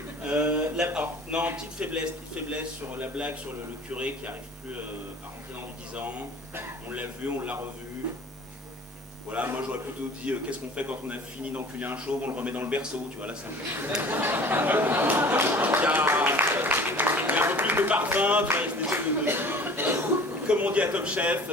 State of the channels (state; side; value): normal; both; correlation 0.45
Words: Alors, non, petite faiblesse sur la blague sur le curé qui n'arrive plus à rentrer dans du 10 ans. On l'a vu, on l'a revu. Voilà, moi j'aurais plutôt dit qu'est-ce qu'on fait quand on a fini d'enculer un chauve, on le remet dans le berceau, tu vois, là c'est un peu... Il y a un peu plus de parfum, tu vois, cette espèce de... Comme on dit à Top Chef,